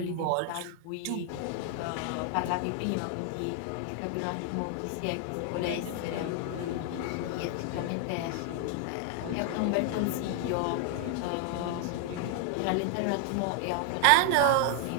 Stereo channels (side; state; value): both; different; correlation 0.00